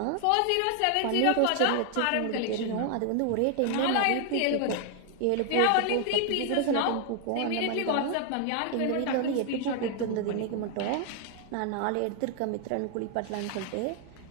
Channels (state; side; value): different; both; correlation 0.00